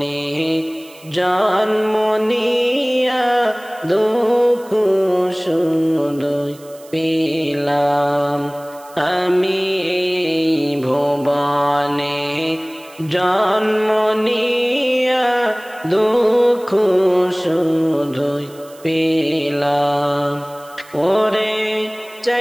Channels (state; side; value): noise; right; hiss, 24 dB below the sound